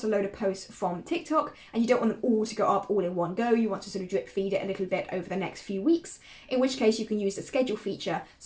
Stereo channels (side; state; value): both; identical; correlation 1.00